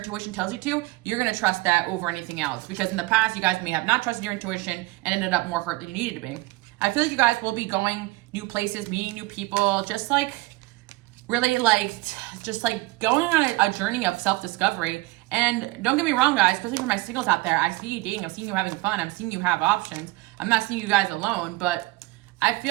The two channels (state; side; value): quieter; left; 21.1 dB